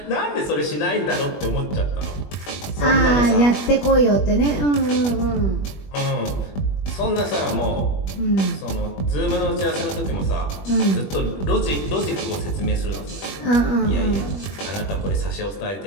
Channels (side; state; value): right; late; 21 ms